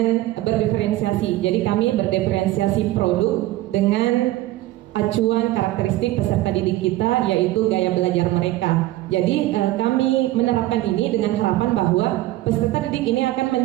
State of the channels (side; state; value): left; quieter; 16.3 dB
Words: berdiferensiasi. Jadi kami berdiferensiasi produk dengan acuan karakteristik peserta didik kita, yaitu gaya belajar mereka. Jadi kami menerapkan ini dengan harapan bahwa peserta didik ini akan